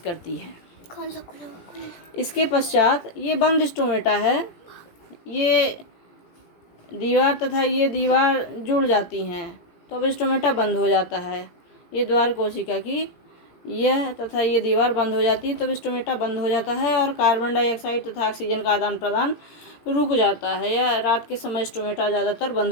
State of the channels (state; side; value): late; right; 17 ms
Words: है। इसके पश्चात ये बंद स्टोमेटा है। ये दीवार तथा ये दीवार जुड़ जाती हैं तो अब स्टोमेटा बंद हो जाता है। ये द्वार कोशिका की यह तथा ये दीवार बंद हो जाती है तब स्टोमेटा बंद हो जाता है और कार्बन डाइऑक्साइड तथा ऑक्सीजन का आदान प्रदान रुक जाता है। यह रात के समय स्टोमेटा ज़्यादातर बंद